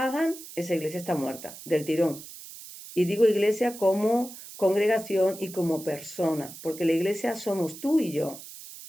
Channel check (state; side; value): noise; right; hiss, 15 dB below the sound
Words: esa iglesia está muerta, del tirón. Y digo iglesia como congregación y como persona, porque la iglesia somos tú y yo.